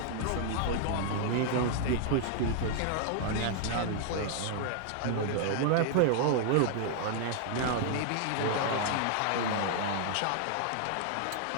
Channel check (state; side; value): different; both; correlation 0.00